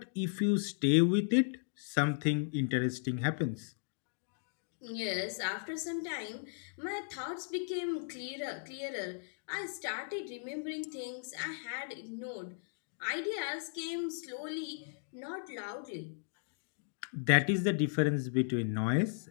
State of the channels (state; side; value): silent; right; digital silence